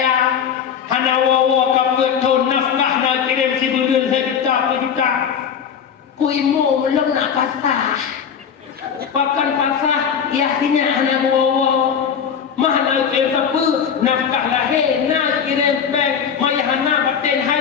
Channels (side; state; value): right; quieter; 7.5 dB